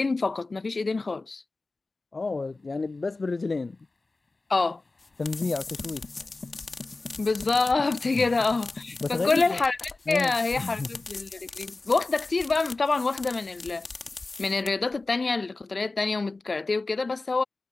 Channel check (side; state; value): right; quieter; 3.4 dB